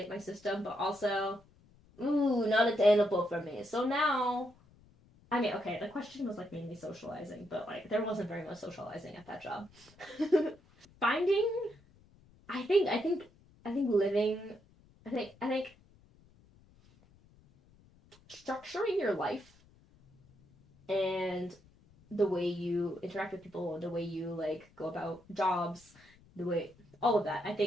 my system, but also, not attainable for me. So now, I mean, okay, the question was like mainly socializing, but like there wasn't very much socializing at that job. Finding, I think living, I think structuring your life and the way you interact with people, the way you like go about jobs, the way all of that. I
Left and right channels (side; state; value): left; noise; rumble, 28 dB below the sound